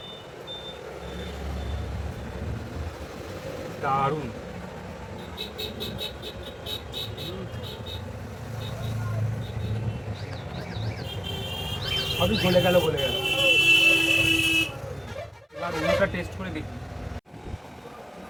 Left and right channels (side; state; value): both; identical; correlation 1.00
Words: দারুণ। সবই গলে গেল গলে গেল। এবার অন্যটা টেস্ট করে দেখি।